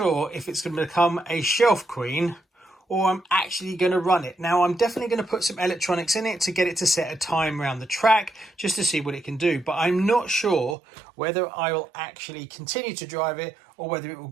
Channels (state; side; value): drops out; left; at 10.8 s